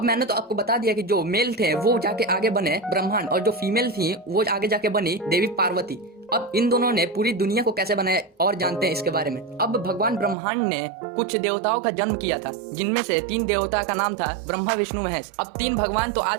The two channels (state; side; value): drops out; left; at 10.4 s